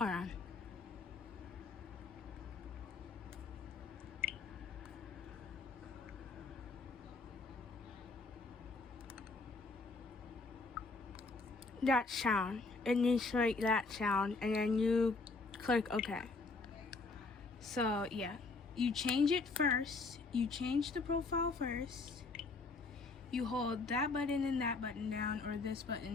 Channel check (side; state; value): right; quieter; 3.8 dB